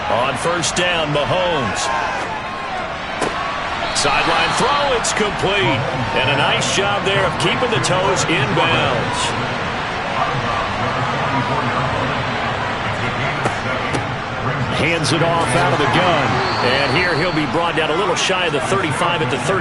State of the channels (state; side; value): identical; both; correlation 1.00